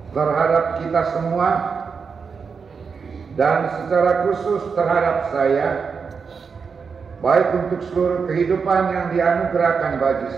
terhadap kita semua, dan secara khusus terhadap saya, baik untuk seluruh kehidupan yang dianugerahkan bagi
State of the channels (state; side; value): quieter; left; 5.6 dB